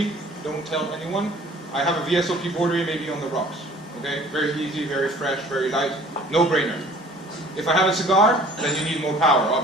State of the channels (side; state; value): both; normal; correlation 0.51